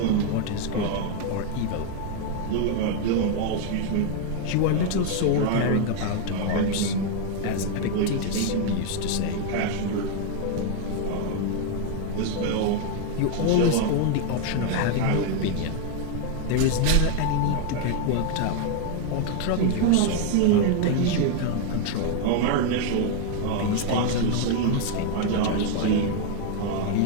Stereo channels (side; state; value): both; different; correlation 0.00